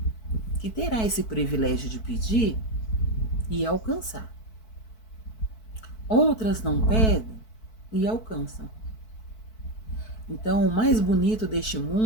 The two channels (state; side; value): late; right; 4.6 ms